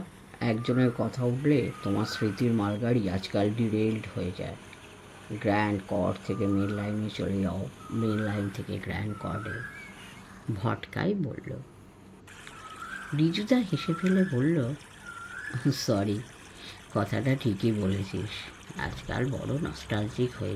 একজনের কথা উঠলে তোমার স্মৃতির মালগাড়ি আজকাল ডিরেইলড হয়ে যায়। গ্র্যান্ড কর্ড থেকে মেন লাইনে চলে যাও, মেন লাইন থেকে গ্র্যান্ড কর্ডে। ভটকাই বলল। ঋজুদা হেসে ফেলে বলল, সরি, কথাটা ঠিকই বলেছিস, আজকাল বড় নস্টালজিক হয়ে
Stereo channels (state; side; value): identical; both; correlation 1.00